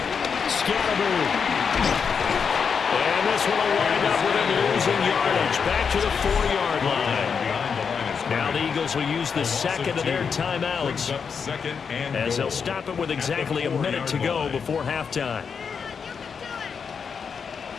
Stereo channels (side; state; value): right; quieter; 6.2 dB